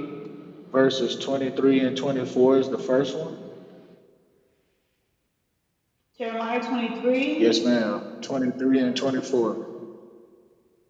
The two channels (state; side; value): identical; both; correlation 1.00